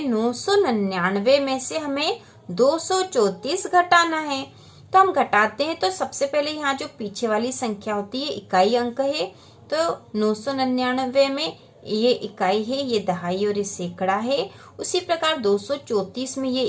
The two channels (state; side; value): identical; both; correlation 1.00